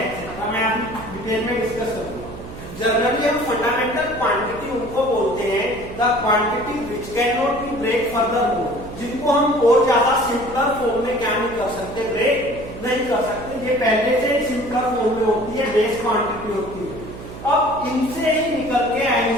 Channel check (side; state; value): right; noise; hum, 13 dB below the sound